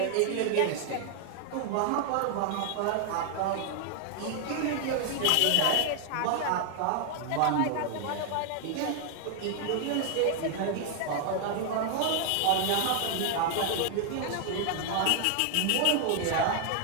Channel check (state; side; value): different; both; correlation 0.00